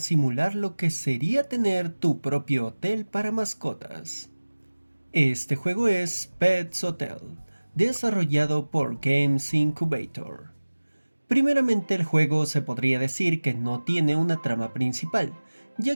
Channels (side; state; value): both; inverted; correlation -1.00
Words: lo que sería tener tu propio hotel para mascotas. Este juego es Pets Hotel, desarrollado por Games Incubator. Primeramente, el juego se podría decir que no tiene una trama principal,